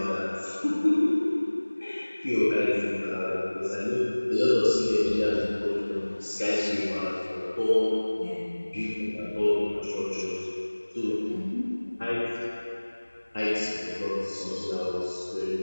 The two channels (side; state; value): both; inverted; correlation -1.00